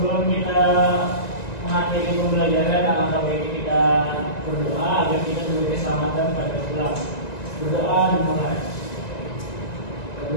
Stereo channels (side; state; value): right; late; 1.9 ms